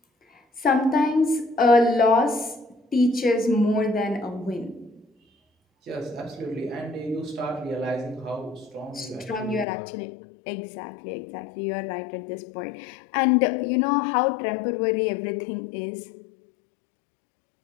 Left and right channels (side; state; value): right; drops out; at 9.7 s